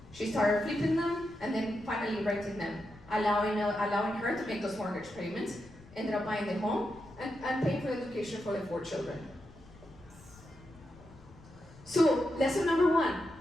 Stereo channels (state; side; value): noise; left; rumble, 22 dB below the sound